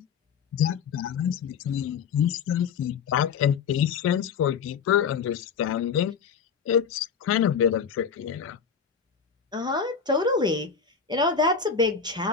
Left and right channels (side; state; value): right; quieter; 6.4 dB